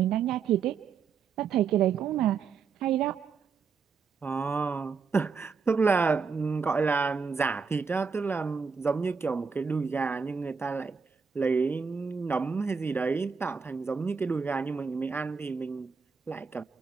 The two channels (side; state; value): left; quieter; 5.6 dB